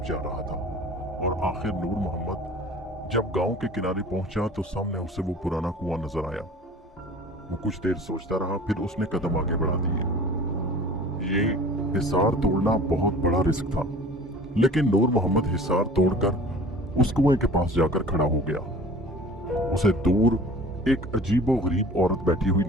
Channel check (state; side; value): normal; both; correlation 0.44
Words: जा रहा था। और आखिर नूर मोहम्मद जब गांव के किनारे पहुंचा तो सामने उसे वो पुराना कुआं नजर आया। वो कुछ देर सोचता रहा, फिर उसने कदम आगे बढ़ा दिए। ये हिसार तोड़ना बहुत बड़ा रिस्क था, लेकिन नूर मोहम्मद हिसार तोड़कर उस कुएं के पास जाकर खड़ा हो गया। उसे दूर एक अजीबो गरीब औरत बैठी हुई